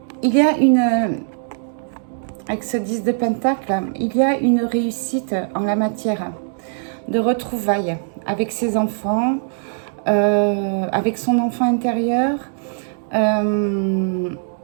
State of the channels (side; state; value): left; silent; 63 dB below the other